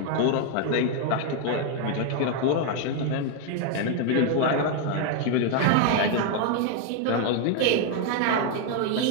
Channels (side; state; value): both; different; correlation 0.01